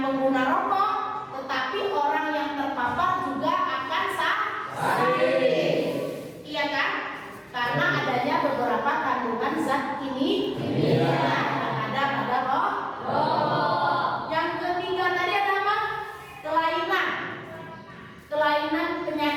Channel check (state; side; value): identical; both; correlation 1.00